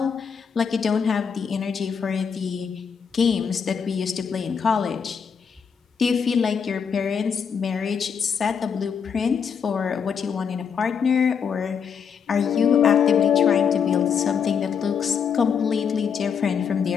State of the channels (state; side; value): quieter; right; 6.8 dB